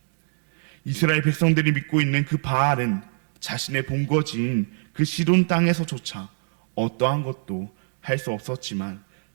이스라엘 백성들이 믿고 있는 그 바알은 자신의 본거지인 그 시돈 땅에서조차 어떠한 것도 할 수 없었지만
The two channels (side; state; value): left; silent; digital silence